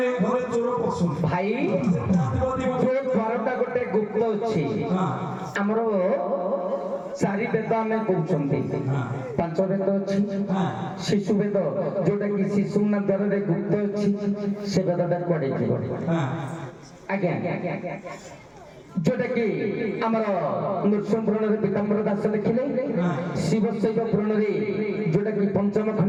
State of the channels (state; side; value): identical; both; correlation 1.00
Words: ଘରେ ଚୋର ପଶୁନି ଭାଇ ଯୋଉ ଦ୍ୱାରଟା ଗୋଟେ ଗୁପ୍ତ ଅଛି ଆମର ଚାରି ବେଦ ଆମେ କହୁଛନ୍ତି ପାଞ୍ଚ ବେଦ ଅଛି ଶିଶୁ ବେଦ ଯୋଉଟା କି ଶିଶୁ ନା ଦ୍ୱାରରେ ଗୁପ୍ତ ଅଛି ସେ ବେଦଟା କୁଆଡେ ଥିବ ଆଜ୍ଞା ଯୋଉଟା କି ଆମର ନୃସିଂହ ପୁରାଣରେ ପୀତାମ୍ବର ଦାସ ଲେଖିଲେ ଶିବ ଶୈବ ପୁରାଣରେ ଯୋଉଟା କି ପଞ୍ଚମ